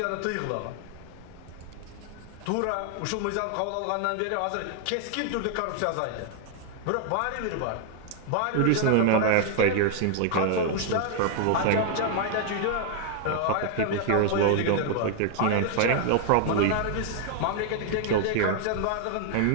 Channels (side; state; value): both; different; correlation 0.00